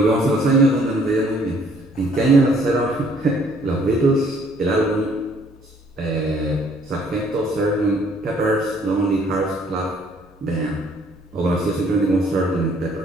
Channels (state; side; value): normal; both; correlation 0.62